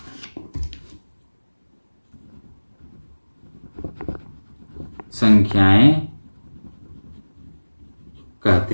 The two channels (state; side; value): inverted; both; correlation -1.00